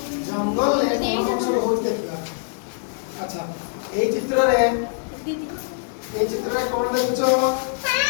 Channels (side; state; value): right; silent; digital silence